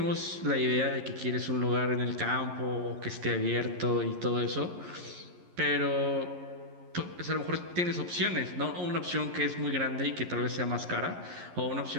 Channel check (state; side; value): late; left; 11 ms